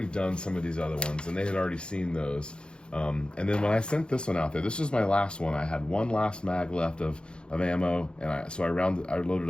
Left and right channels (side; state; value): right; late; 0.052 ms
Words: done some of these other ones, and they had already seen those. And then when I sent this one out there, this was my last one. I had one last mag left of ammo, and I